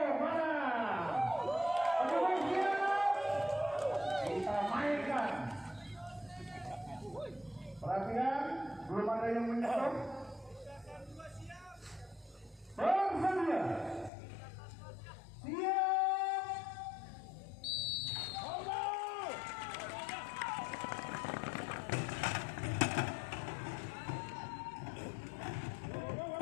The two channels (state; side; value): drops out; right; at 14.1 s